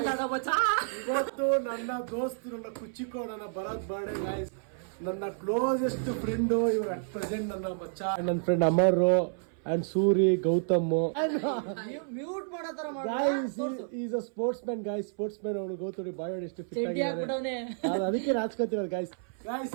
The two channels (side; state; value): left; silent; 57 dB below the other